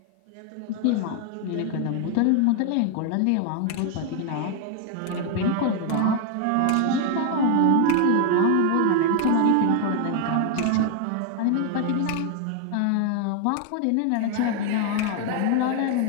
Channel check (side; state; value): both; different; correlation 0.00